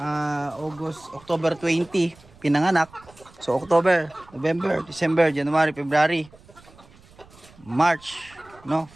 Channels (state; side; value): noise; right; rumble, 25 dB below the sound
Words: October 20 pinanganak. So October, November, December, January, February, March, no?